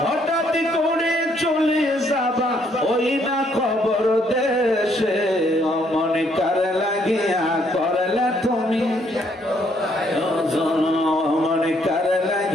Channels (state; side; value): normal; both; correlation 0.69